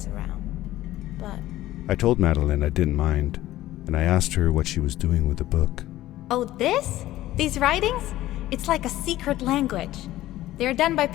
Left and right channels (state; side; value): quieter; right; 15.2 dB